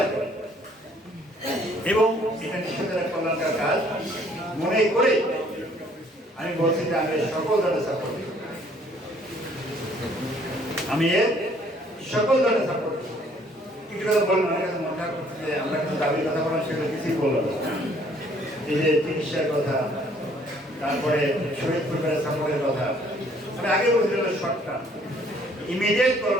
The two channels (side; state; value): both; normal; correlation 0.61